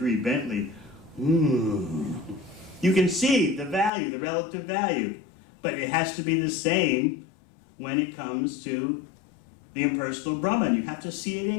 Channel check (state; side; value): drops out; right; at 3.9 s